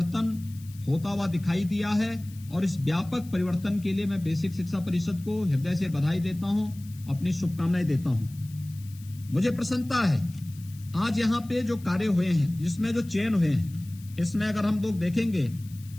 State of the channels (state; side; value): noise; left; hiss, 23 dB below the sound